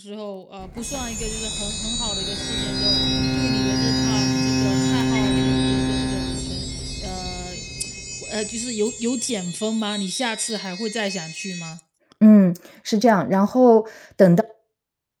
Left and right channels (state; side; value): identical; both; correlation 1.00